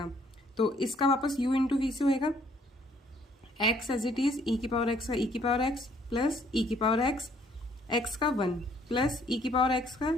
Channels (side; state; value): both; normal; correlation 0.64